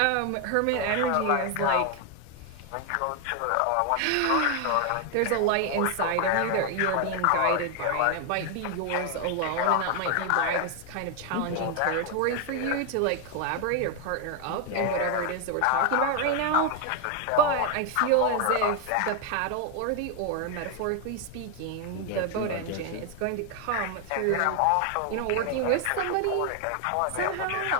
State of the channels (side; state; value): both; different; correlation 0.00